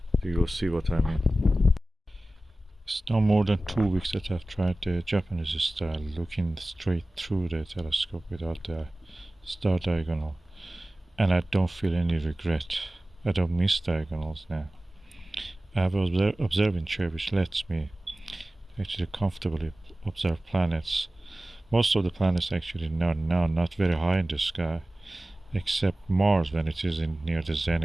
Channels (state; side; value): normal; both; correlation 0.97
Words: You'll see what I mean. It's no more than 2 weeks that I've tried the Japanese style, looking straight through the telescope without the star diagonal, and I don't feel any regret. I don't miss diagonals now. I have an observing chair which lets me actually comfortably observe planets Most of the planets actually not very high in the sky, except Mars when it is in near the